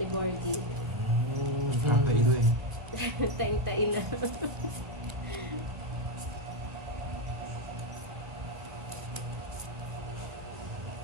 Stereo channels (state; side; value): late; left; 1.2 ms